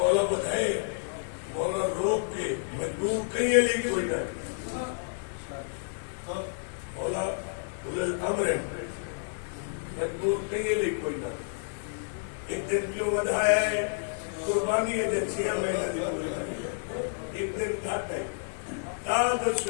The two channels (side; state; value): right; silent; digital silence